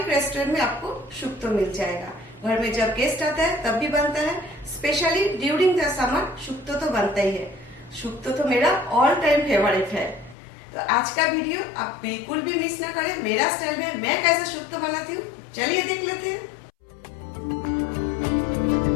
रेस्टोरेंट में आपको शुक्तो मिल जाएगा। घर में जब गेस्ट आता है तब भी बनता है। Specially during the summer shukto तो बनता ही है। शुक्तो तो मेरा ऑल टाइम फेवरेट है। तो आज का वीडियो आप बिल्कुल भी मिस ना करें। मेरा स्टाइल में मैं कैसे शुक्तो बनाती हूँ, चलिए देख लेते हैं।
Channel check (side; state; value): right; drops out; at 10.4 s